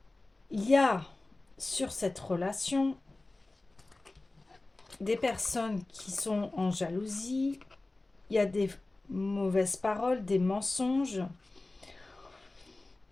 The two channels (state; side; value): quieter; right; 3.0 dB